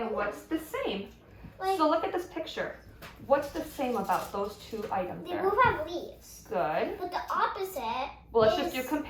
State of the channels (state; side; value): identical; both; correlation 1.00